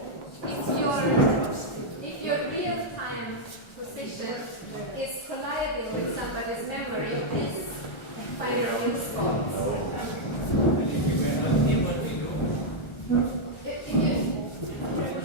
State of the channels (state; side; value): late; right; 1.4 ms